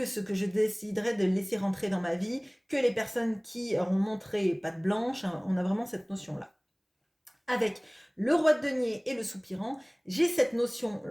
ce que je déciderai de laisser rentrer dans ma vie, que les personnes qui auront montré patte blanche, hein, on a vraiment cette notion-là. Avec le roi de denier et le soupirant, j'ai cette notion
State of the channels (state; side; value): identical; both; correlation 1.00